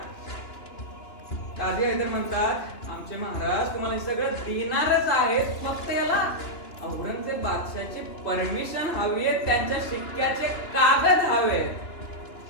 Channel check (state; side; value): late; right; 2.9 ms